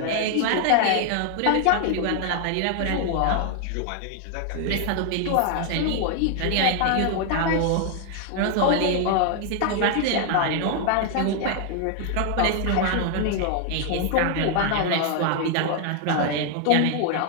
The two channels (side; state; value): both; different; correlation 0.00